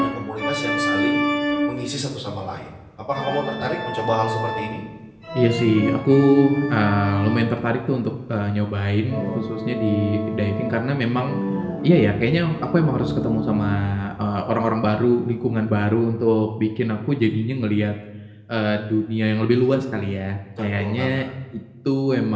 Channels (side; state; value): both; identical; correlation 1.00